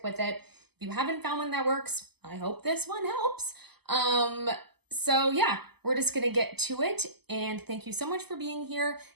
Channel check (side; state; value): left; late; 0.97 ms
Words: with it. If you haven't found one that works, I hope this one helps. So yeah, we're just gonna get to it. And thank you so much for being here.